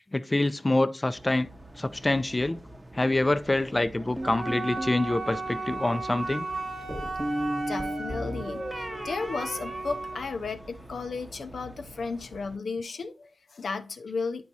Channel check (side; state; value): both; normal; correlation 0.97